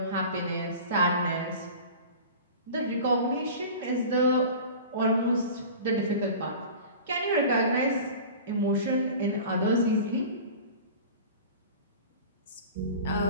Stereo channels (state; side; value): inverted; both; correlation -0.37